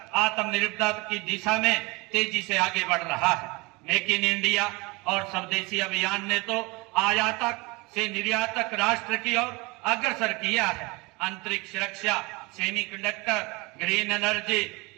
आत्मनिर्भरता की दिशा में तेजी से आगे बढ़ रहा है। मेक इन इंडिया और स्वदेशी अभियान ने तो आयातक से निर्यातक राष्ट्र की ओर अग्रसर किया है। अंतरिक्ष रक्षा, सेमीकंडक्टर, ग्रीन एनर्जी,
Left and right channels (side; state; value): left; quieter; 25.7 dB